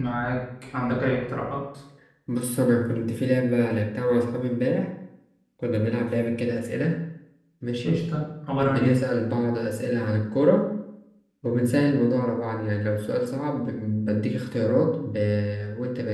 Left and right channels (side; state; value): both; identical; correlation 1.00